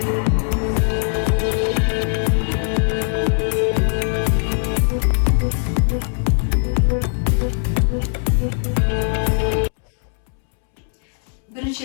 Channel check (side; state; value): right; silent; 66 dB below the other